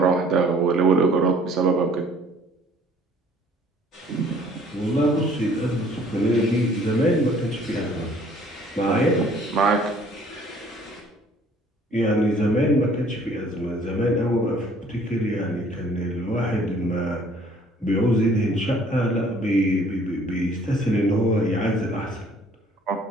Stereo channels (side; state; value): both; normal; correlation 0.57